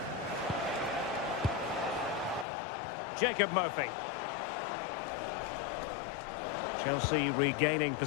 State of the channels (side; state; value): right; drops out; at 2.5 s